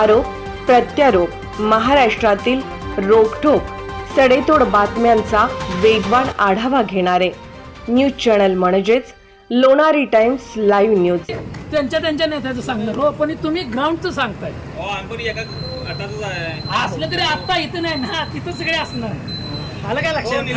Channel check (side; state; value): both; identical; correlation 1.00